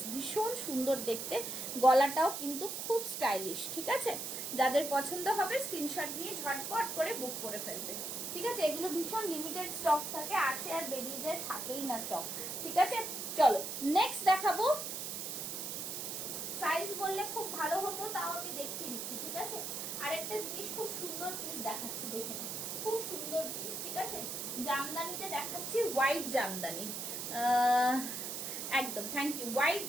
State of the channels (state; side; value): noise; right; hiss, 4 dB below the sound